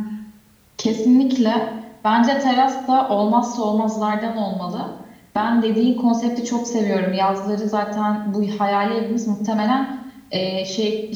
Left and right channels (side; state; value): both; identical; correlation 1.00